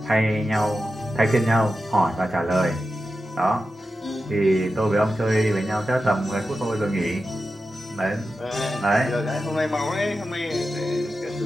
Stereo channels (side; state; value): both; normal; correlation 0.91